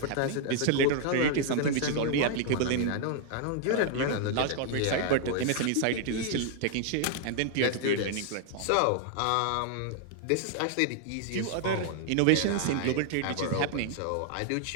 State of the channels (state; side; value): different; both; correlation 0.00